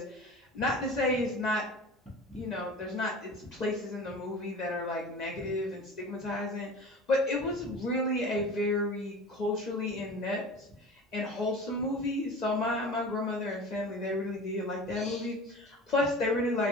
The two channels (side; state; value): both; normal; correlation 0.37